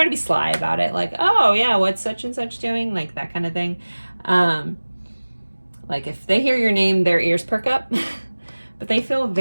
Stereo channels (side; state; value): both; inverted; correlation -1.00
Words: to be sly about it. Like, oh yeah, what's such and such doing? Like that kind of thing. Like if they hear your name, their ears perk up, but they feel